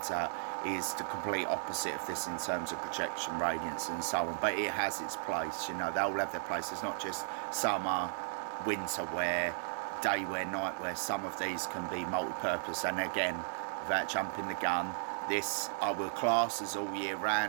out, is the complete opposite of this in terms of projection, radiance and so on. But it has its place, you know, they all have their place. It's not just summer, winter wear, day wear, night wear. Some of these can be multi-purpose. And again, without jumping the gun, this I will class as all year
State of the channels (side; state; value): left; silent; 54 dB below the other